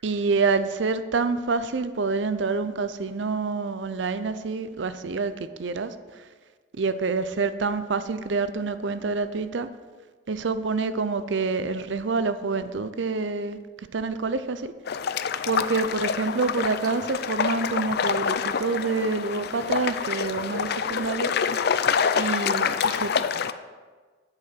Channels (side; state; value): both; normal; correlation -0.08